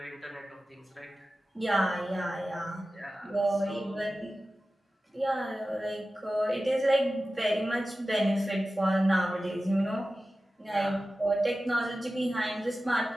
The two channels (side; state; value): both; normal; correlation 0.95